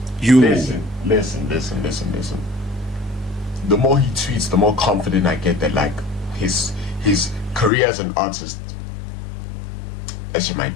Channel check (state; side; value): drops out; right; at 7.7 s